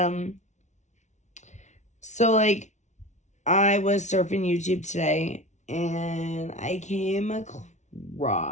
so, like, I was surfing YouTube today, and I came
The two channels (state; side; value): late; right; 0.34 ms